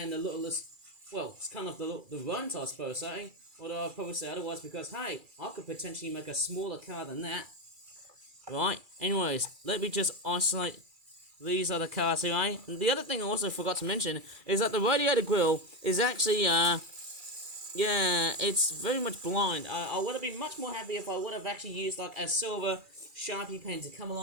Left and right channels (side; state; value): left; late; 2.3 ms